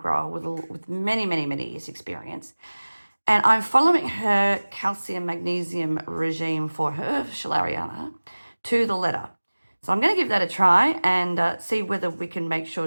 with many, many, many years experience. And I'm following her calcium magnesium regime for her schilleriana to the letter. So I'm going to give that a try and see whether we can make sure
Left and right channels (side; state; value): both; inverted; correlation -1.00